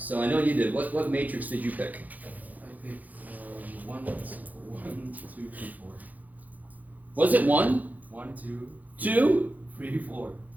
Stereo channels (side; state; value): left; late; 0.080 ms